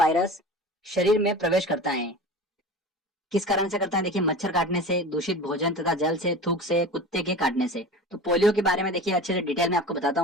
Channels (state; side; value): normal; both; correlation 0.35